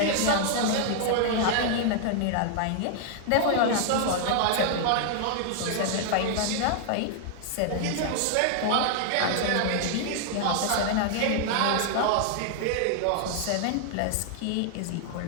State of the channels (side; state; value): both; different; correlation 0.00